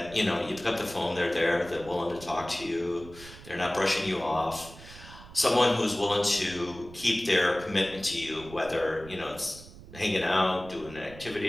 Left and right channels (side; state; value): right; noise; rumble, 17 dB below the sound